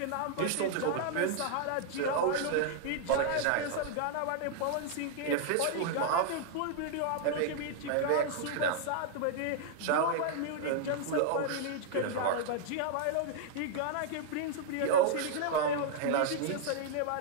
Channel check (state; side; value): different; both; correlation -0.01